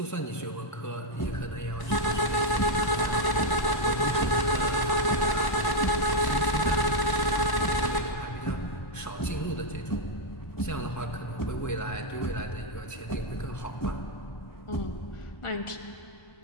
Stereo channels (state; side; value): late; right; 1.0 ms